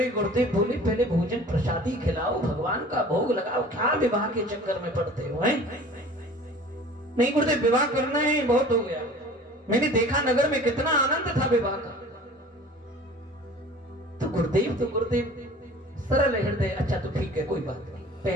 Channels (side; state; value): both; normal; correlation 0.45